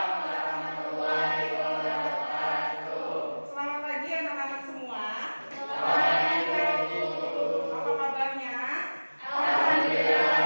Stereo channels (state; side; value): inverted; both; correlation -1.00